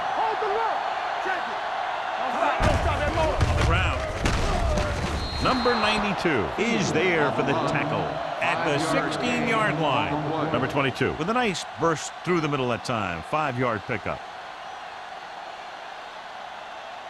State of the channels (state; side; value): identical; both; correlation 1.00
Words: Hold the look. Check it. Don't stop that motor. On the ground. Number 92 is there for the tackle at the 16-yard line. Number 22 with a nice burst through the middle that time. 5-yard pickup.